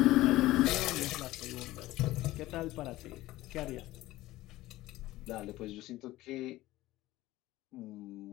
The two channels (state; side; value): quieter; right; 17.0 dB